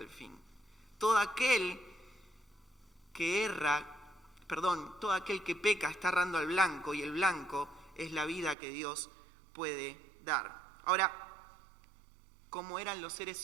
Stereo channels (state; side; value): drops out; left; at 8.6 s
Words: fin. Todo aquel que peca está errando al blanco, y el blanco es la vida que Dios puede dar. Ahora, ¿cómo eran los